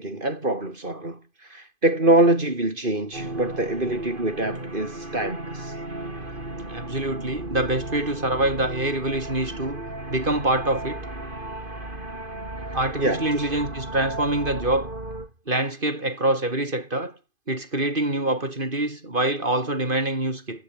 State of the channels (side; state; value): left; late; 2.5 ms